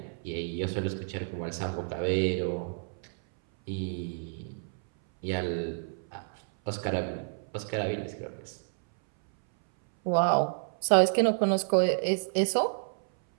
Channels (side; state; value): left; silent; 58 dB below the other